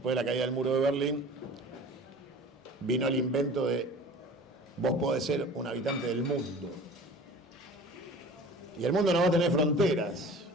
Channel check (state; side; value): normal; both; correlation 0.42